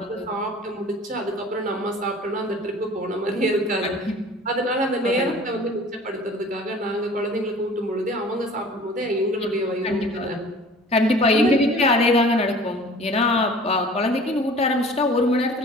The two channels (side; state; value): both; normal; correlation 0.46